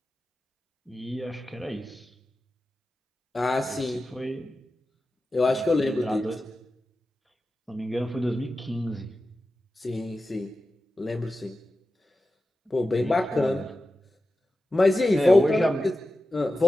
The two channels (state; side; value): normal; both; correlation 0.93